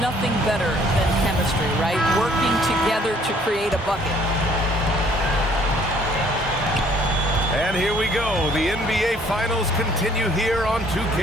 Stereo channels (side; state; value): both; normal; correlation 0.60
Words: better than chemistry, right? Working together to create a bucket. And here we go. The NBA Finals continue here on